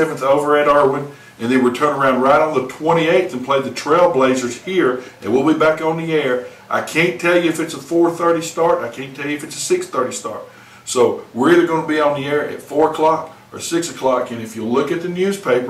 over at Irwin, and then we turn around right on the 28th and play the Trailblazers here, and we'll be back on the air. I can't tell you if it's a 4:30 start. I can't tell you if it's a 6:30 start. So we're either going to be on the air at 4 o'clock or 6 o'clock, and if you look at the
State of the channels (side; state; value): both; identical; correlation 1.00